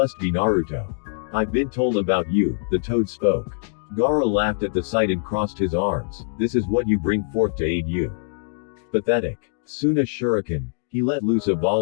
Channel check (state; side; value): silent; right; digital silence